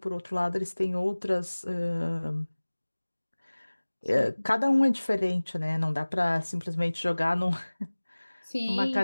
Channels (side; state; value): both; inverted; correlation -1.00